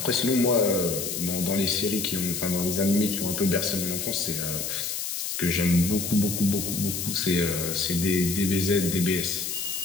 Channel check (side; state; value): left; noise; hiss, 3 dB below the sound